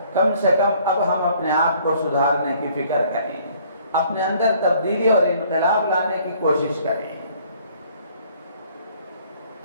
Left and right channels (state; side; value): inverted; both; correlation -0.59